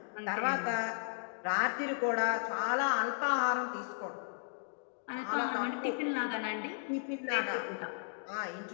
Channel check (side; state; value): right; silent; digital silence